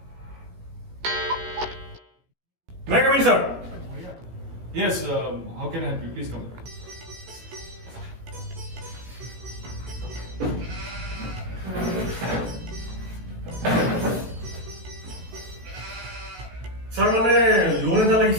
May I come in, sir? Yes, how can I help you? Please come. Sir, মানে লোন এটা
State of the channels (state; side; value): late; left; 16 ms